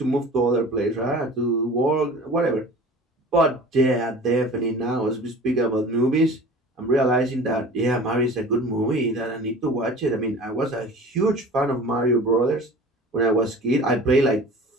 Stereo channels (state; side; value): normal; both; correlation 0.41